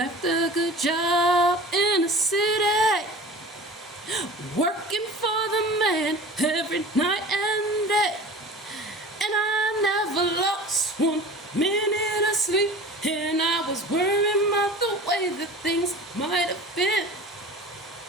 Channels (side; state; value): both; normal; correlation 0.39